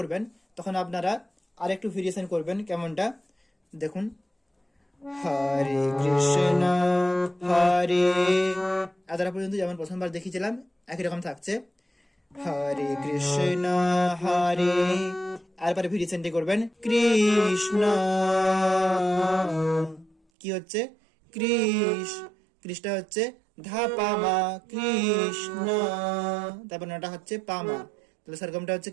তখন আপনারা আরেকটু ভেরিয়েশন করবেন। কেমনটা দেখুন হরে কৃষ্ণ হরে, এতটা পর্যন্ত যেমন প্রথমবার দেখিয়েছিলাম একই রকম থাকছে হরে কৃষ্ণ হরে, এরপরে ভেরিয়েশনটি করবেন কৃষ্ণ, কি হচ্ছে কৃষ্ণ হচ্ছে ধা পা মা কৃষ্ণ, তারপর নটা হচ্ছে পা মা, তাহলে সরগমটা হচ্ছে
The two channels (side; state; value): left; drops out; at 20.2 s